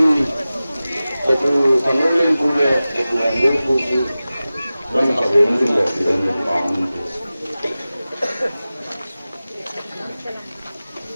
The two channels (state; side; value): inverted; both; correlation -0.96